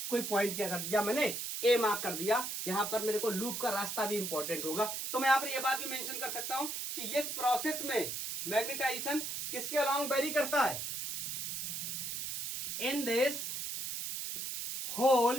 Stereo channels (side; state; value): right; noise; hiss, 4 dB below the sound